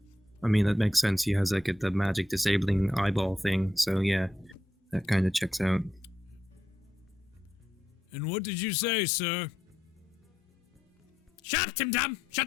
I mean, that makes sense. He has like the magic disabling eyeball thing. So yeah, that kind of checks out. And what did you say, sir? Shut up, Tim Tom! Shut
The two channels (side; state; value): both; normal; correlation 0.81